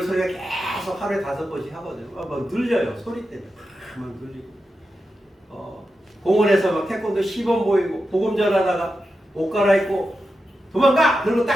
소리가 계속 하루에 5번씩 하거든요. 막 눌려요. 소리 때문에 막 눌리고 공원에서 막 태권도 시범 보이고 복음 전하다가 옷 갈아입고 도망가! 그러고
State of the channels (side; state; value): both; normal; correlation 0.90